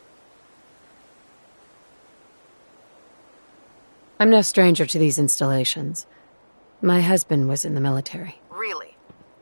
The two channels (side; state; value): both; inverted; correlation -1.00